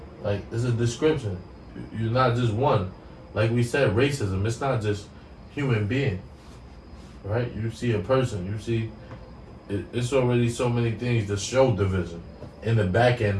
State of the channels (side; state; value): both; identical; correlation 1.00